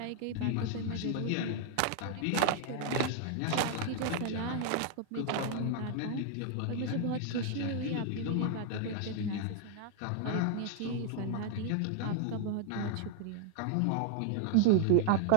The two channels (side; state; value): both; different; correlation 0.00